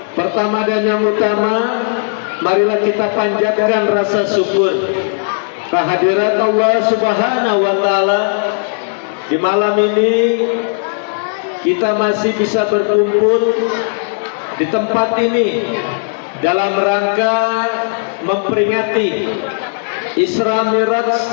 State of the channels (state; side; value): silent; right; digital silence